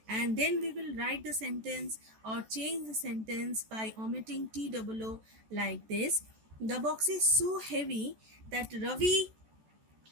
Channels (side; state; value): left; late; 14 ms